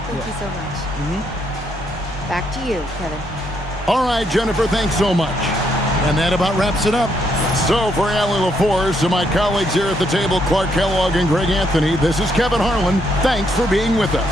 Thank you so much. Back to you, Kevin. All right, Jennifer, thanks so much. And that about wraps it up. So for Allie LaForce and my colleagues here at the table, Clark Kellogg and Greg Anthony, this is Kevin Harlan. Thanks for being with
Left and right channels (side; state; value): both; normal; correlation 0.74